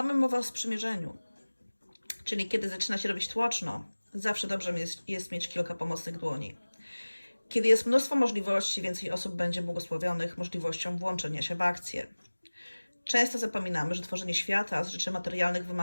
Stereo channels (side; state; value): both; inverted; correlation -1.00